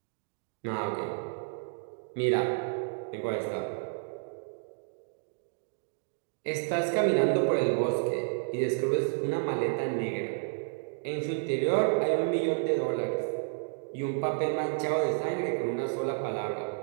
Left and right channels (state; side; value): silent; left; digital silence